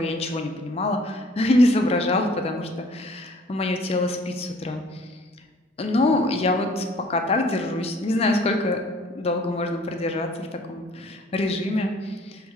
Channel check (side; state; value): both; normal; correlation 0.54